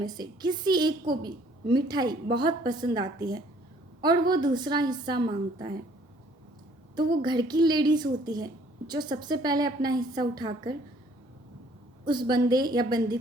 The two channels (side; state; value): both; normal; correlation 0.59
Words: से किसी एक को भी मिठाई बहुत पसंद आती है और वो दूसरा हिस्सा मांगता है, तो वो घर की लेडीज़ होती है जो सबसे पहले अपना हिस्सा उठाकर उस बंदे या बंदी